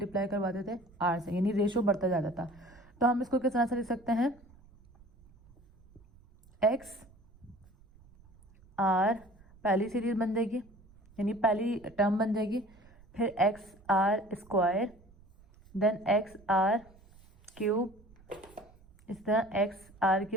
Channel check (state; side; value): noise; right; rumble, 26 dB below the sound